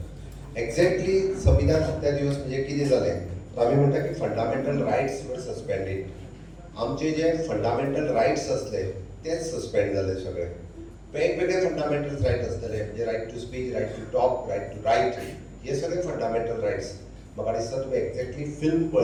एक्झॅक्टली संविधान हत्या दिवस म्हणजे कितें जालें तर आमी म्हणटा की फंडामेंटल रायट्स वर सस्पेंडेड. आमचे जे फंडामेंटल रायट्स असले तेच सस्पेंड जाले सगळे. वेगवेगळे फंडामेंटल रायट आसतले म्हणजे right to speech, right to talk, right to write हे सगळे फंडामेंटल रायट्स. म्हाका दिसता तुमी एक्झॅक्टली फिल्म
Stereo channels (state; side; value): identical; both; correlation 1.00